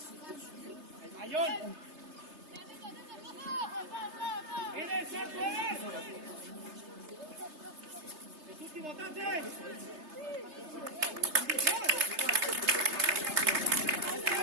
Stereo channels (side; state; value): left; late; 3.3 ms